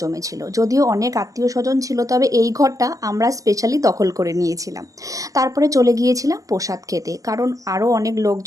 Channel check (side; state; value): left; late; 0.17 ms